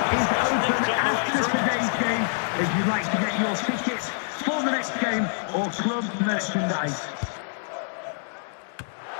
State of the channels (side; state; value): right; silent; digital silence